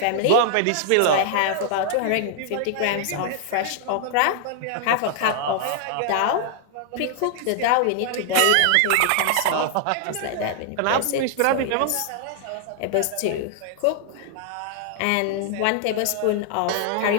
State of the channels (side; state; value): both; different; correlation -0.01